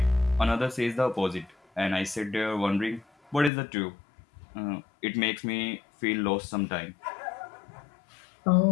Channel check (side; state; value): right; drops out; at 3.5 s